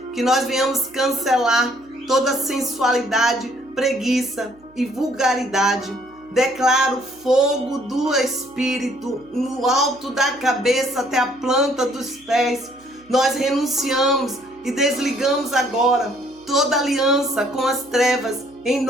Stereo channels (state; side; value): noise; right; hum, 29 dB below the sound